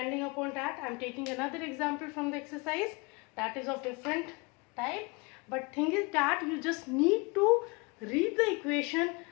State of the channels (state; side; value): quieter; right; 28.2 dB